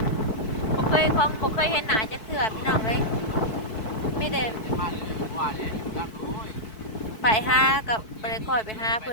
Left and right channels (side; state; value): right; late; 4.6 ms